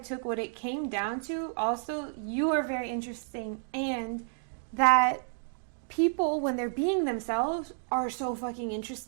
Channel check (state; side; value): silent; left; digital silence